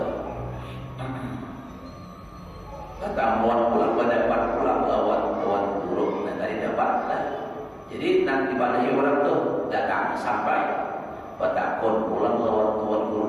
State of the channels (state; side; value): identical; both; correlation 1.00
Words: Katamuan pulang pulang lawan tuan guru dan tadi dapat lah. Jadi nanti pada orang tuh datang sampai batakon pulang lawan tuan guru